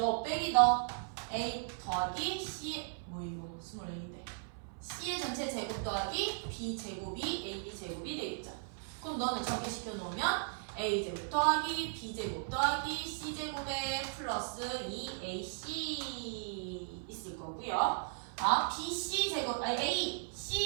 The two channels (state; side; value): silent; left; 53 dB below the other